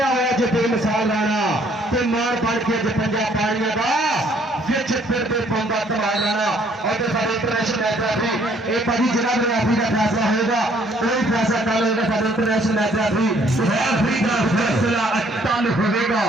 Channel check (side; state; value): both; normal; correlation 0.63